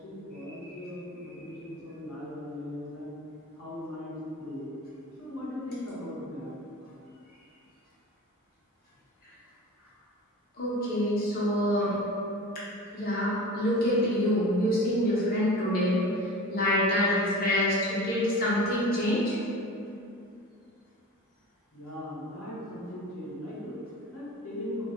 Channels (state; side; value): normal; both; correlation 0.36